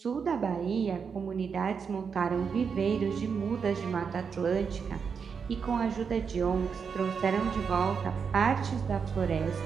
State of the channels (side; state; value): left; quieter; 6.2 dB